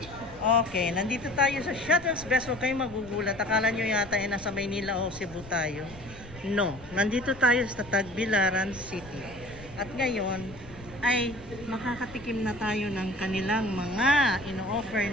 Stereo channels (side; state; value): left; noise; rumble, 19 dB below the sound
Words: Okay, nandito tayo sa Shuttle's Best. Huwag kayong magugulat. Akala nyo yata nasa Maynila o Cebu tayo. No, nandito tayo sa Tagbilaran City. At ngayon ay makakatikim na tayo ng kanilang mga ino-offer